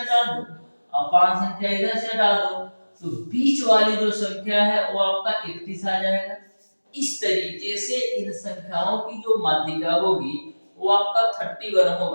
दो और 5 संख्या इधर से हटा दो, तो बीच वाली जो संख्या है वो आपका 31 आ जाएगा। इस तरीके से इन संख्याओं की जो माध्यिका होगी वो आपका 31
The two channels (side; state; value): both; inverted; correlation -1.00